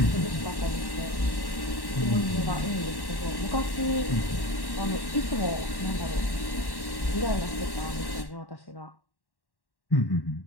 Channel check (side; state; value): right; late; 1.1 ms